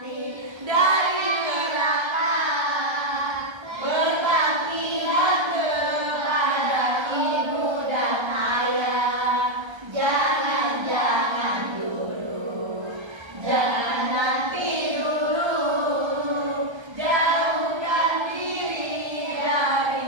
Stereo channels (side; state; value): left; late; 1.3 ms